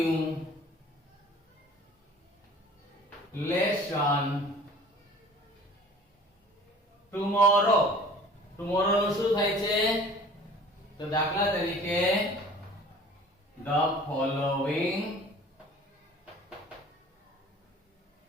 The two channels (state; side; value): normal; both; correlation 0.47